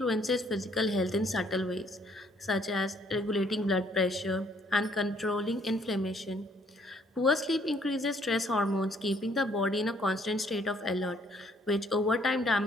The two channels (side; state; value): both; normal; correlation 0.64